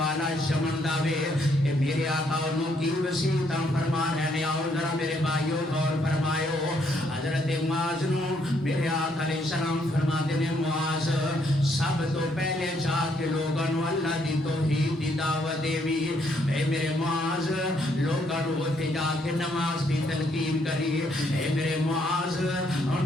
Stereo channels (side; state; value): both; normal; correlation 0.71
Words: یمن دا وے. اے میرے آقا انہوں کی وسیعتاں فرما رہے نے. آؤ ذرا میرے بھائیو غور فرمائیو. حضرت معاذ نو میرے آقا علیہ السلام فرما دے نے معاذ سب تو پہلے جا کے لوگاں نو اللہ دی توحید دی دعوت دیوی. اے میرے معاذ لوگاں نو اوتھے جا کے نماز دی تلقین کری. اے میرے معاذ